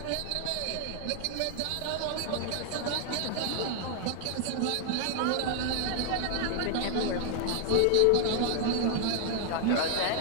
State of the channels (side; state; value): both; different; correlation 0.00